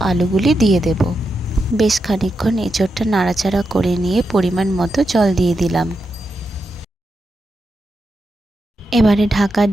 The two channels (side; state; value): both; normal; correlation 0.86